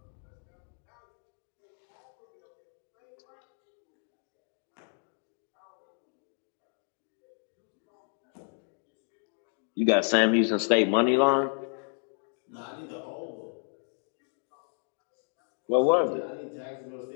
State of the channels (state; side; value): silent; right; 56 dB below the other